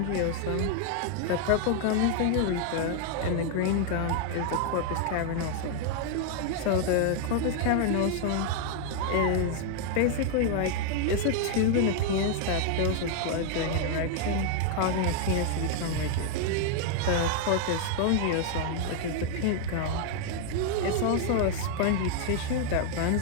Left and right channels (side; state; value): both; different; correlation 0.00